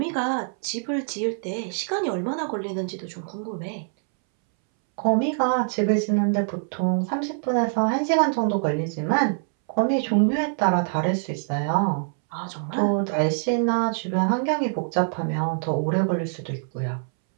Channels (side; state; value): left; silent; 62 dB below the other